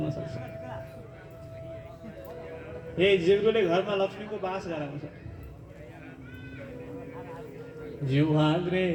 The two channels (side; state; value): both; identical; correlation 1.00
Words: सक्छ। ए जिब्रोले घरमा लक्ष्मीको बास गराउँछ। जिह्वाग्रे